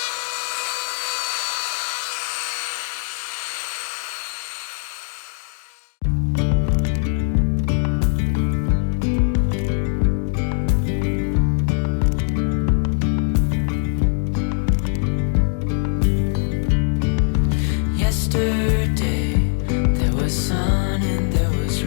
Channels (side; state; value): right; silent; 65 dB below the other